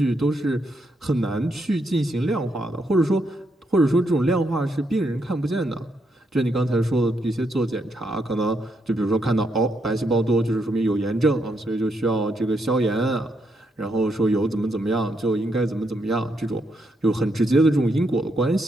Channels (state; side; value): normal; both; correlation 0.79